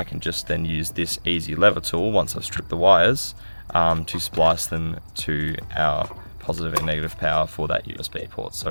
can just then use this easy lever tool once I've stripped the wires to splice them to our positive and negative power for that USB port. So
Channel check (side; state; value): both; inverted; correlation -1.00